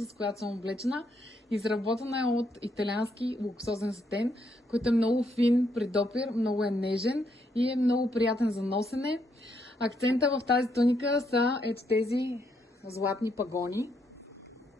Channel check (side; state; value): both; normal; correlation 0.76